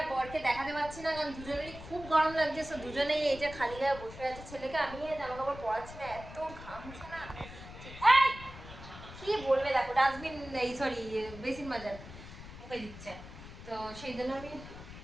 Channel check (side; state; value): left; noise; rumble, 14 dB below the sound